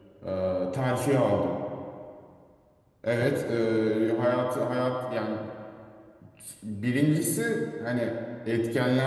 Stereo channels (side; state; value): both; identical; correlation 1.00